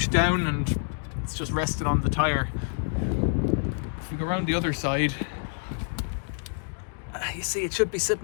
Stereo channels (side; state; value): right; silent; digital silence